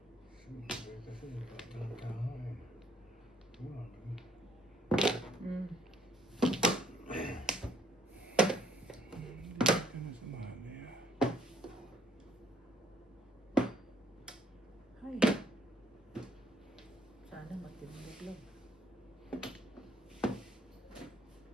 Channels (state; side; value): normal; both; correlation 0.66